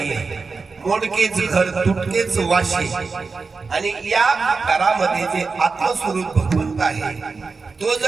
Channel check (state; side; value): quieter; left; 4.5 dB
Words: मोडकेच घर तुटकेच वाशी. आणि या घरामध्ये जे आत्मस्वरूप भगवंत आहे तो